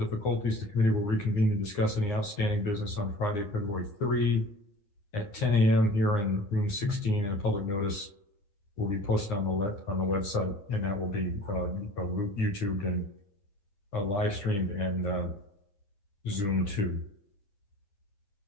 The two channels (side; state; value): right; late; 9.8 ms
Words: the committee will reconvene to discuss any outstanding business on Friday, February 3 at 10 a.m. here in room 16, and a public notice will be posted on the website, and that will be YouTubed and live streamed and Zoom too.